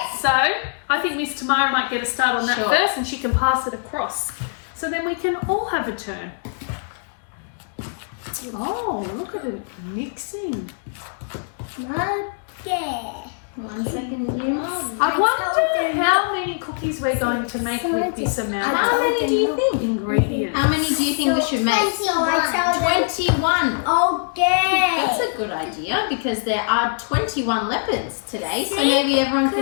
So I think Miss Tamara might get a start on that Sure. first and she can pass it across. So then we can all have a turn. Oh, look at it mixing. Okay. 1 second, Jim. I wonder how many cookies we're going to make with this amount How of many do you think? ingredients. How many do you think we should make? So I tell them. 21. Okay. That's a good idea because there are 21 leopards today, so maybe everyone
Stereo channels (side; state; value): right; silent; digital silence